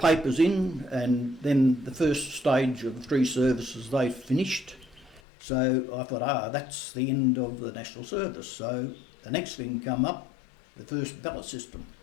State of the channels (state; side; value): drops out; right; at 5.2 s